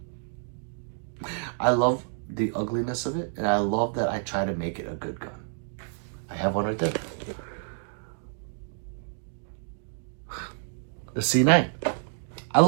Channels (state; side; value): silent; left; digital silence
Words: I love the ugliness of it, and I love that I try to make it a good gun. I have one right there. The C9. I